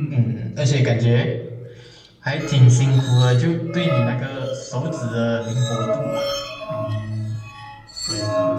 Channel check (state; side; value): identical; both; correlation 1.00